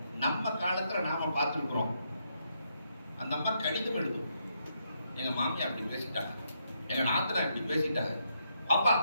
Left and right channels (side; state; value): both; inverted; correlation -0.78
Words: நம்ம காலத்துல நாம பார்த்திருக்கிறோம். அந்த அம்மா கடிதம் எழுதும், எங்க மாமியா அப்படி பேசிட்டாங்க, எங்க நாத்தனா இப்படி பேசிட்டாங்க, அப்பா